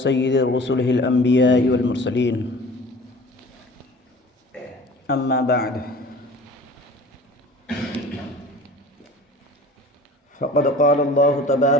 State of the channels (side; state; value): both; normal; correlation 0.43